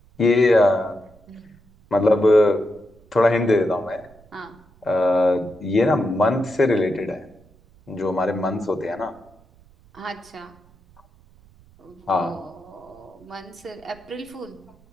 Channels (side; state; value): right; noise; rumble, 28 dB below the sound